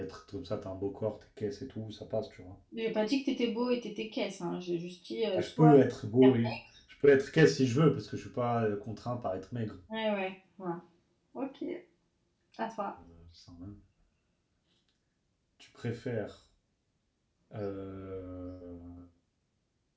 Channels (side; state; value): both; identical; correlation 1.00